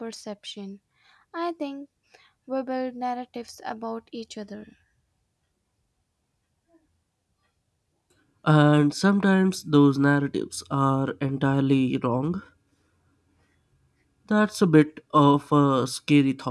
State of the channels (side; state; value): both; identical; correlation 1.00